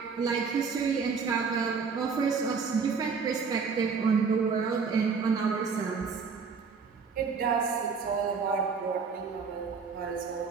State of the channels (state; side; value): quieter; left; 5.4 dB